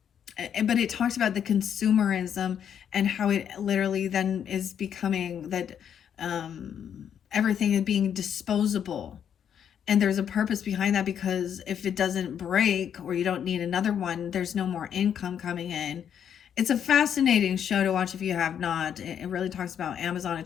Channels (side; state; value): right; quieter; 8.6 dB